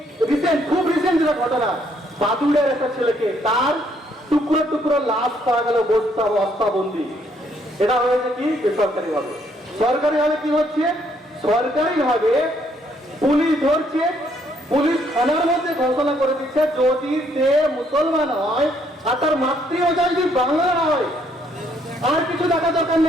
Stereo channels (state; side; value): normal; both; correlation 0.69